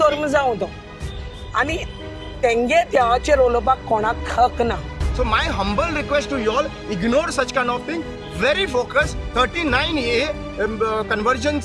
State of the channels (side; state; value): both; identical; correlation 1.00